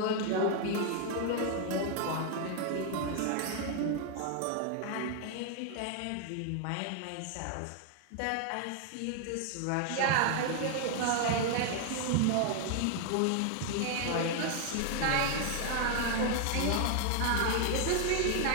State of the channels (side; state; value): both; different; correlation 0.00